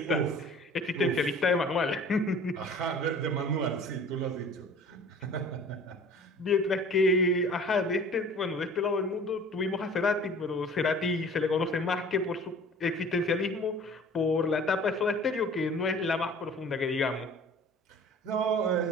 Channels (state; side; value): normal; both; correlation 0.46